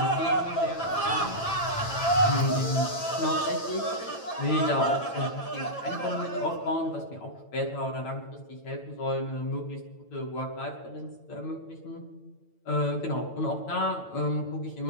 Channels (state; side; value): late; right; 8.9 ms